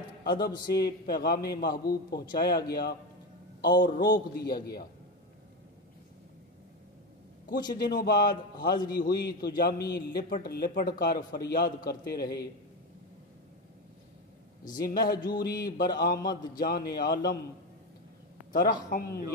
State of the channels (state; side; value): normal; both; correlation 0.16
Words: ادب سے پیغام محبوب پہنچایا گیا اور روک دیا گیا۔ کچھ دنوں بعد حاضری ہوئی تو جامی لپٹ لپٹ کر فریاد کرتے رہے، ز مہجوری برآمد جان عالم، ترحم